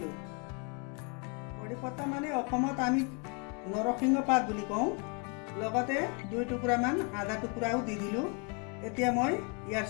কড়ি পত্তা মানে অসমত আমি নৰসিংহ পাত বুলি কওঁ। লগতে 2 টুকুৰামান আদা টুকুৰাও দি দিলোঁ। এতিয়া মই ইয়াৰ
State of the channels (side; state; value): right; quieter; 34.9 dB